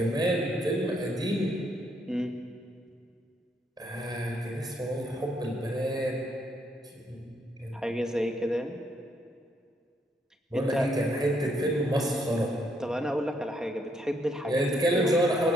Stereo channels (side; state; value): both; normal; correlation 0.73